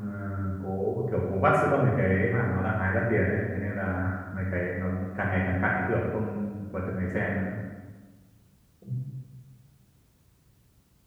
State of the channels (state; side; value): identical; both; correlation 1.00